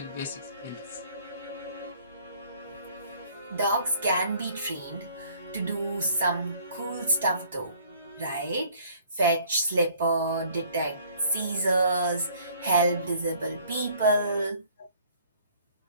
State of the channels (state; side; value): inverted; both; correlation -0.57